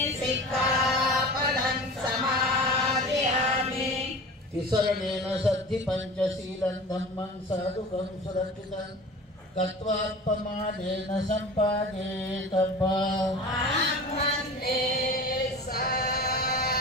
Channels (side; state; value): both; normal; correlation 0.36